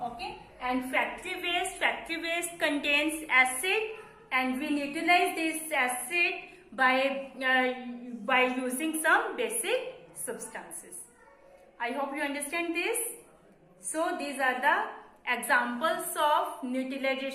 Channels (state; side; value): identical; both; correlation 1.00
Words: Okay, and factory waste contains acid, and we neutralize this acid by using some basic substances. I hope you understand this. So these are the examples of